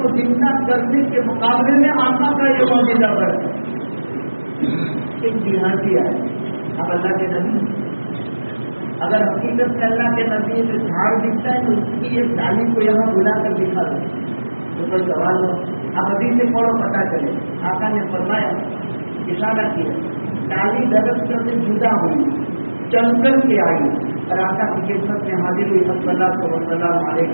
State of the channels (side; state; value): both; inverted; correlation -1.00